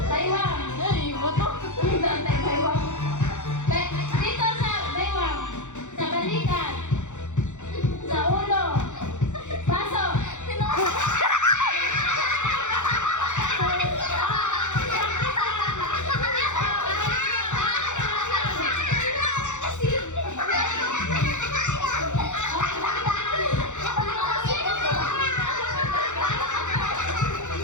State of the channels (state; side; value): late; right; 0.85 ms